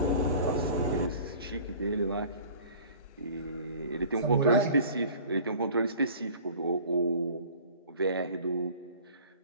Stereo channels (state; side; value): inverted; both; correlation -0.46